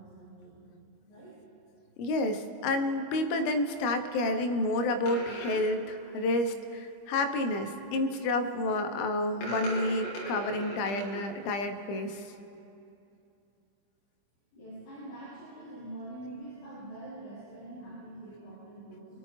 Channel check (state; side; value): late; right; 25 ms